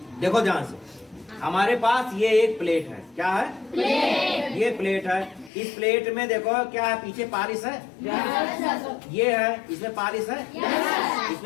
देखो ध्यान से, हमारे पास ये एक प्लेट है। क्या है? प्लेट। ये प्लेट है। इस प्लेट में देखो क्या है, पीछे पालिश है। ये है, इसमें पालिश है।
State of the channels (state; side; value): drops out; right; at 5.5 s